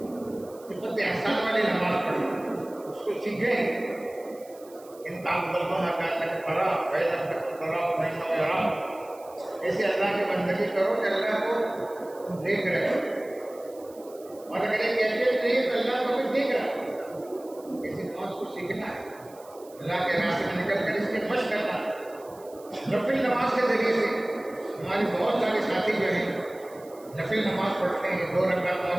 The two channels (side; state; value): right; noise; hiss, 24 dB below the sound